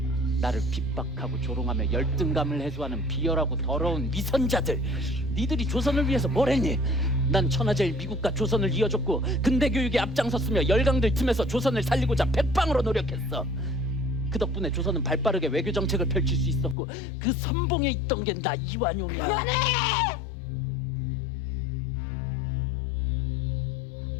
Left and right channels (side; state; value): right; drops out; at 16.8 s